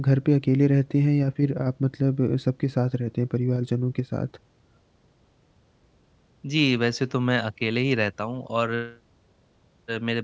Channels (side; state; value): both; identical; correlation 1.00